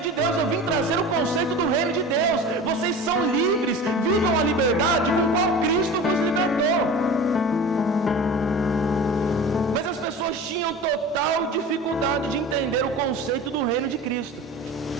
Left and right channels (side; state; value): both; normal; correlation 0.35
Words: de Deus, eu vim trazer o conceito do reino de Deus. Vocês são livres, vivam a liberdade com qual Cristo vos libertou. Mas as pessoas tinham total dificuldade de entender o conceito do reino de Cristo.